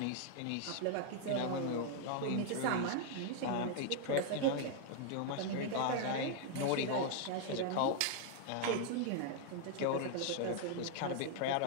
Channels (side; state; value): both; different; correlation 0.00